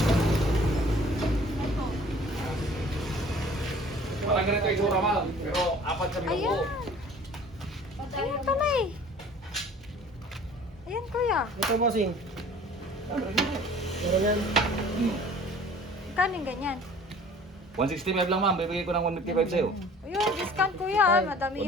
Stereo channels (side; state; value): both; normal; correlation 0.49